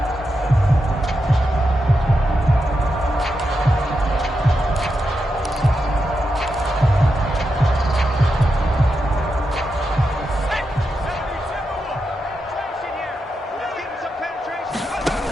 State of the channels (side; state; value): both; normal; correlation 0.87